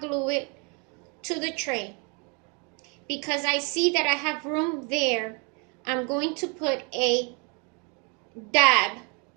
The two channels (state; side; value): quieter; left; 33.9 dB